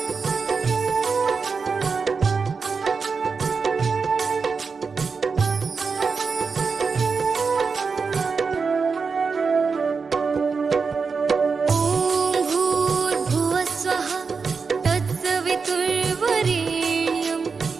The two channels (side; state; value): left; quieter; 5.1 dB